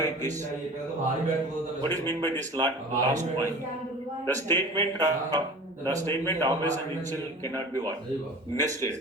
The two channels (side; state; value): both; normal; correlation 0.39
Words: this? What is mean by this last point? The statement always and initial cannot be what?